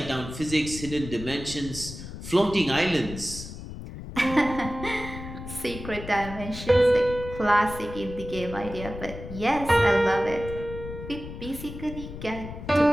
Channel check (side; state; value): left; noise; rumble, 11 dB below the sound